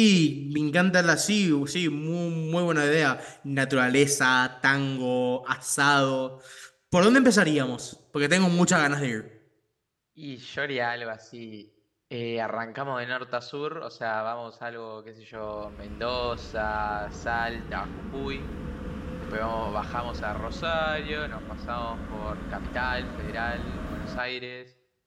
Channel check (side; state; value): both; identical; correlation 1.00